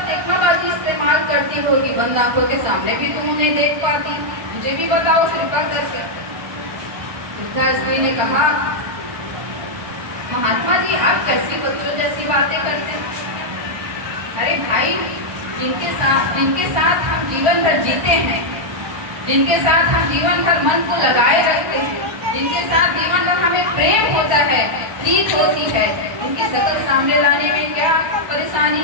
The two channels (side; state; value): left; late; 1.5 ms